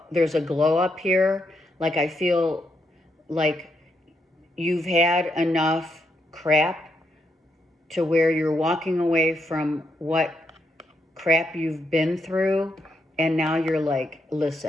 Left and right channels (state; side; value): normal; both; correlation 0.80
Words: there's a glow up here. Like I feel like you've had enough crap to where you're walking away from what crap you've been through, and now you're like,